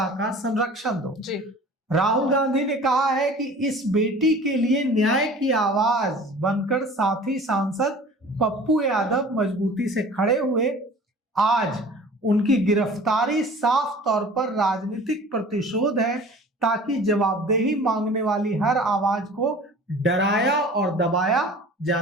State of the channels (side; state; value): both; normal; correlation 0.44